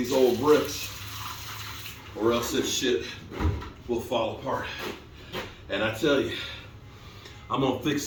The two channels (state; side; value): identical; both; correlation 1.00